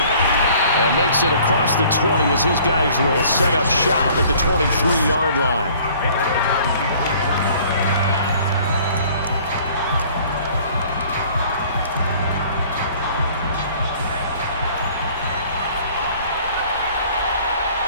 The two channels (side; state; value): both; inverted; correlation -0.53